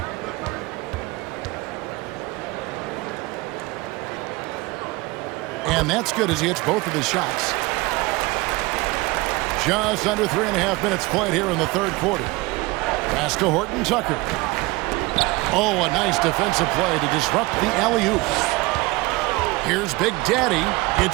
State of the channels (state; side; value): quieter; left; 22.8 dB